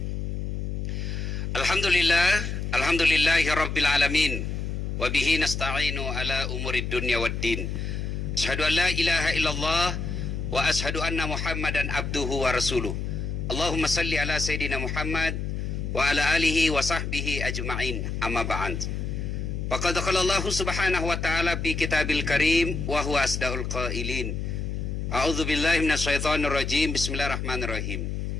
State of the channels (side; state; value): left; noise; hum, 3 dB below the sound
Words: Alhamdulillahi rabbil alamin. Wabihi nasta'inu ala umurid dunya waddin. Asyhadu an la ilaha illallah wa asyhadu anna muhammadan abduhu wa rasuluh. Allahumma salli ala sayyidina Muhammad wa ala alihi wa sahbihi ajma'in. Amma ba'd. Faqad qala Allah subhanahu wa ta'ala fi kitabil karim wa huwa asdaul qailin. A'udzu billahi minasyaitonir rajim. Bismillahirrahmanirrahim.